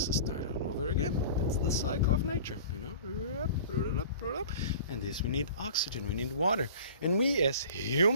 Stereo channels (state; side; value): inverted; both; correlation -0.41